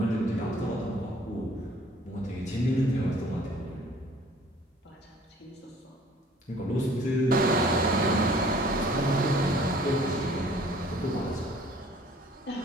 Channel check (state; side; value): normal; both; correlation 0.54